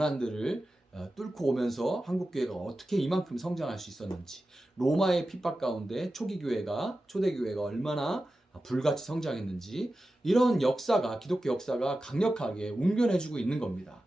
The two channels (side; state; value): both; normal; correlation 0.93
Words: 뚫고 오면서 한국 교회가 어떻게 이만큼 성장할 수 있었는지, 로마의 핍박 가운데 초대 교회가 얼마나 불같이 성장했는지, 이런 역사가 기독교 역사가 강력하게 웅변해주고 있는 겁니다.